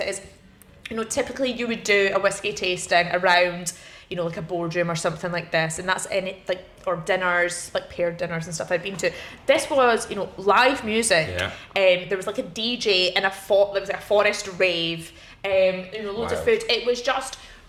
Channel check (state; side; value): identical; both; correlation 1.00